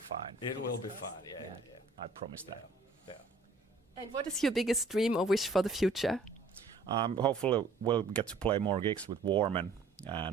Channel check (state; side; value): quieter; left; 3.8 dB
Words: It will be fun. Yeah. I promise that. Yeah. And what is your biggest dream or wish for the future? Hopefully, we'll get to play more gigs with WARMEN